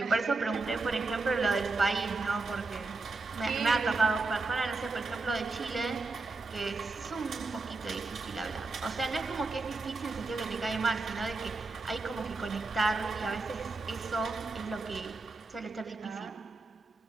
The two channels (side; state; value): left; quieter; 3.7 dB